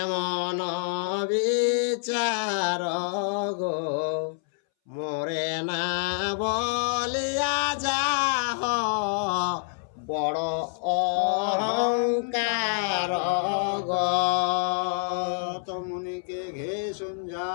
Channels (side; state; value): right; silent; 60 dB below the other